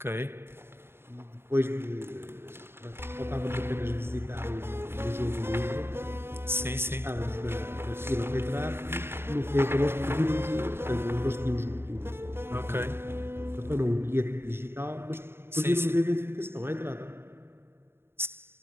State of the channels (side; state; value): left; late; 0.11 ms